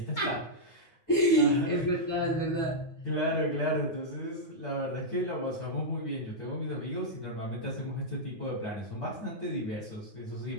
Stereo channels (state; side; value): late; right; 9.6 ms